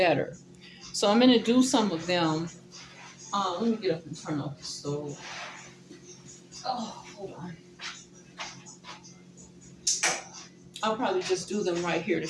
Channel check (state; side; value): identical; both; correlation 1.00